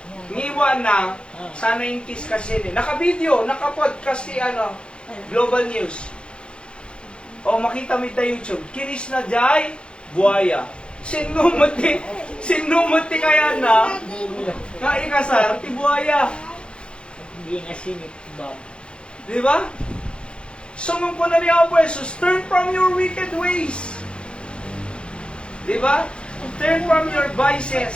ngiwan na, sana yung kiss kasi ni. Naka-video, naka-podcast si Global News. O makita mo ita YouTube, kinis na jay, buaya. Sinumuti kaya na ikasar, ti buhaya. Hindi nga sinit, Bob. Di ba? Sumong po na niya po, Jesus, turn from your wicked ways. Di ba? Turn from your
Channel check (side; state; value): right; late; 0.055 ms